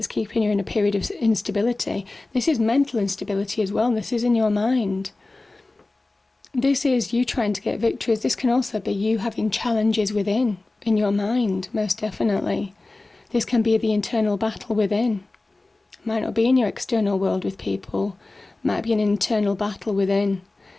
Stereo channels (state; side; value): quieter; right; 3.1 dB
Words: keeping you in a period of instability. This is mental instability as well. This is in your mind. This is you trying to get victories. This can also be you having challenges within, in your mind, most definitely. This can be the internal battle within. Might not be in your external world with people. Might be an internal battle within.